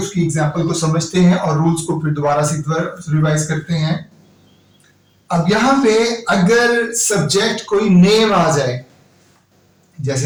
एग्जांपल को समझते हैं और रूल्स को फिर दोबारा से रिवाइज करते हैं. अब यहां पे अगर सब्जेक्ट कोई नेम आ जाए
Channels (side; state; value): both; identical; correlation 1.00